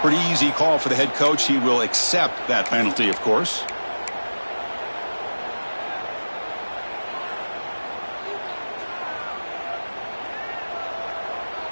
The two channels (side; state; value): both; inverted; correlation -1.00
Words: Pretty easy call for the head coach. He will accept that penalty, of course.